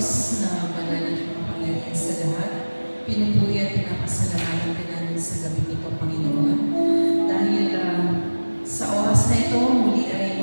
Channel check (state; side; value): inverted; both; correlation -1.00